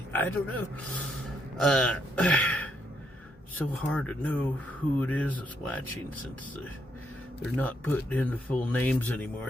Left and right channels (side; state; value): both; normal; correlation 0.76